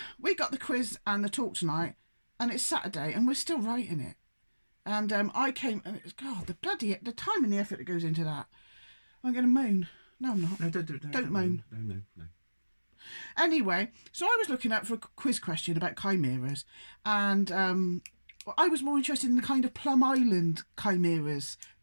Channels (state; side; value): inverted; both; correlation -1.00